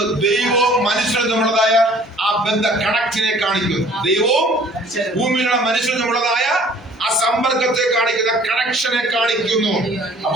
ദൈവവും മനുഷ്യരും തമ്മിലുള്ളതായ ആ ബന്ധ കണക്റ്റിനെ കാണിക്കുന്നു. ദൈവവും ഭൂമിയിലുള്ള മനുഷ്യരും തമ്മിലുള്ളതായ ആ സമ്പർക്കത്തെ കാണിക്കുന്ന കണക്ഷനെ കാണിക്കുന്നു.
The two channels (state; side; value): normal; both; correlation 0.53